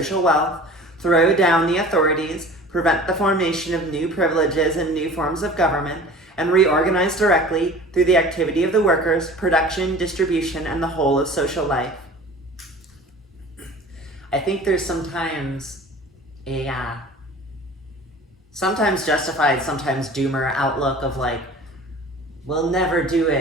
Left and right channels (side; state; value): both; normal; correlation 0.43